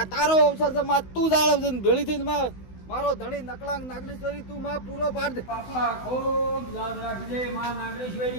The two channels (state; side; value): late; right; 16 ms